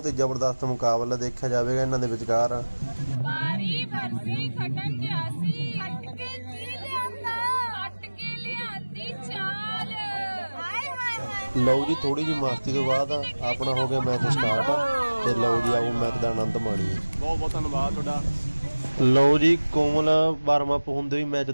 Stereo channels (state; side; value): inverted; both; correlation -1.00